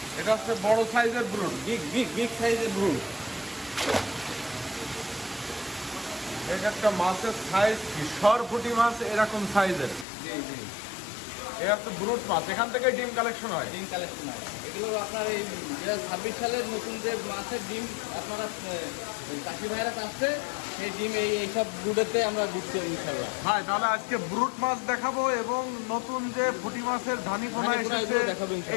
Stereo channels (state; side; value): drops out; right; at 10.1 s